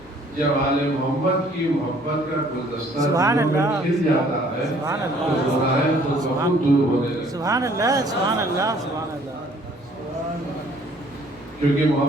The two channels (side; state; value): both; normal; correlation 0.59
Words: جب آل محمد کی محبت کا گلدستہ سبحان اللہ کھل جاتا ہے سبحان تو اللہ گناہ تو بہت دور ہونے لگتے ہیں سبحان اللہ سبحان اللہ سبحان اللہ کیونکہ